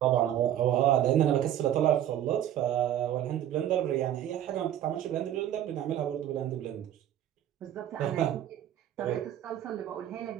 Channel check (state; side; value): quieter; left; 11.3 dB